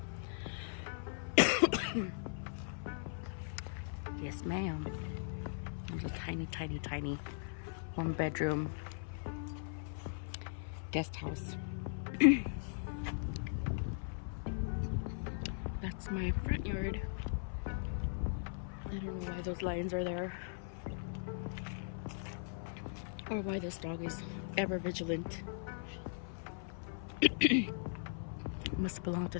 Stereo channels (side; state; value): right; silent; 52 dB below the other